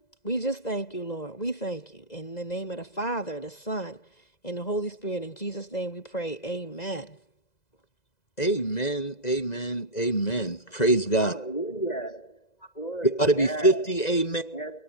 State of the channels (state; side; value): late; right; 2.0 ms